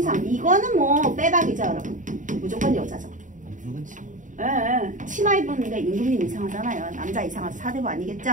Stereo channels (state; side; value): late; left; 0.37 ms